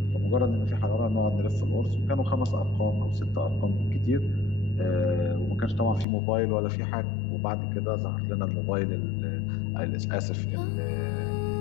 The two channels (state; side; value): drops out; right; at 6.1 s